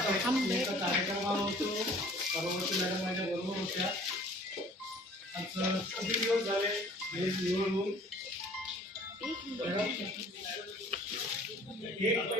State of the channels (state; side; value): normal; both; correlation 0.52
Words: हम कार्यक्रमावर होतो. परवर्ती मॅडम माझ्या बरोबर होत्या. आज किती दिवस झाले निवड होऊन एक